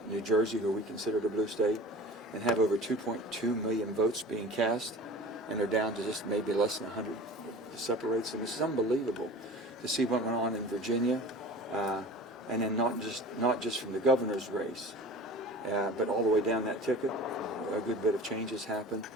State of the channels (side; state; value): both; normal; correlation 0.39